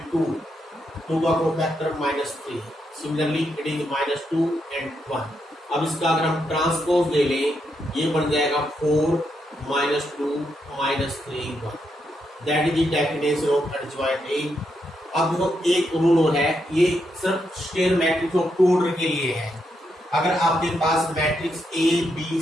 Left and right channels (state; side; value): normal; both; correlation 0.81